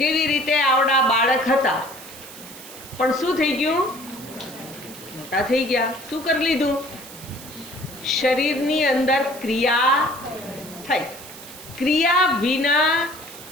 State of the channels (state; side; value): noise; right; hiss, 16 dB below the sound